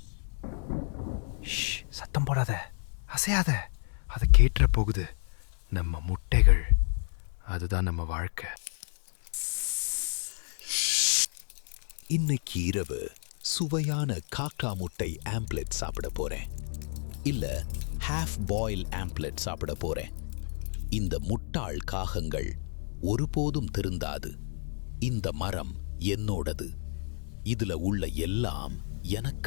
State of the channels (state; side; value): silent; right; 57 dB below the other